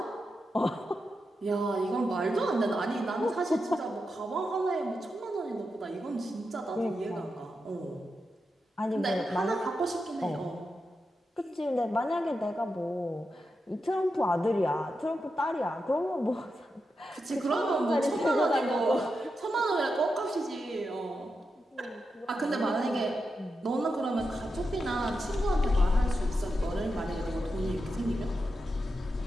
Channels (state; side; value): normal; both; correlation 0.88